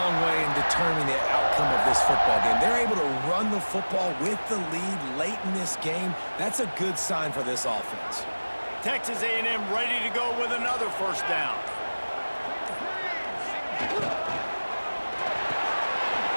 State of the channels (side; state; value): both; inverted; correlation -1.00